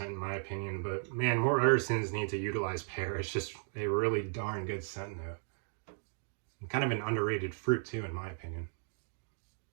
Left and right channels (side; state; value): left; silent; 54 dB below the other